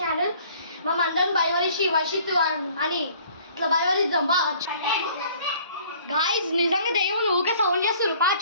మనందరం భయవరిషి వర్షిత్ అని ఇట్లా భయవరిద్దాం బా. గాయస్ నిజంగా దెయ్యం ఊకే సౌండ్ చేస్తారు. పా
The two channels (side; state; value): both; inverted; correlation -0.55